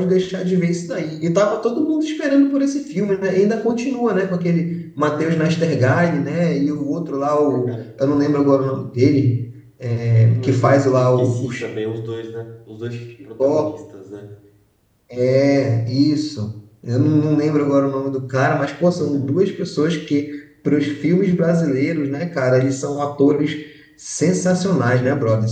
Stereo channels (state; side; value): identical; both; correlation 1.00